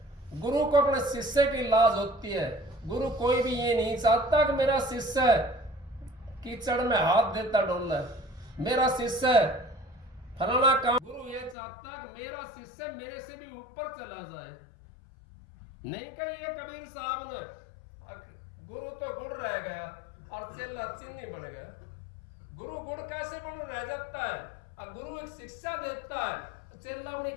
गुरु को अपने शिष्य की लाज होती है। गुरु कोई भी ये नहीं चाहता कि मेरा शिष्य कीचड़ में हाथ देता डोले, मेरा शिष्य फलाना काम। गुरु ये चाहता कि मेरा शिष्य मेरे से भी ऊपर चला जाए। नहीं कही ये कबीर साहब ने, गुरु तो गुड़ रह गया और चेला चीनी बन गया। गुरु गुड़ कैसे बन रह जाता है? अब गुरु एक शिक्षा देता है, चेला अपनी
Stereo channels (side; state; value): right; drops out; at 11.6 s